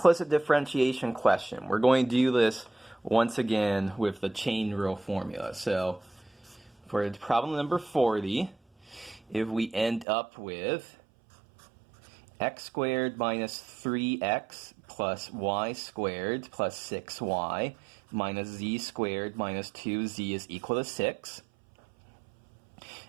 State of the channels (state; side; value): drops out; left; at 10.1 s